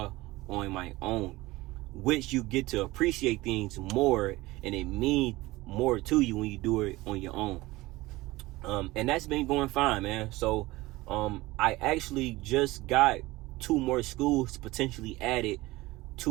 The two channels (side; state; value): left; quieter; 19.6 dB